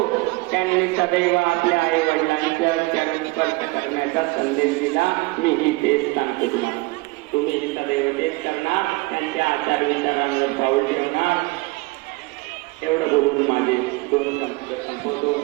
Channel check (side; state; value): left; quieter; 24.0 dB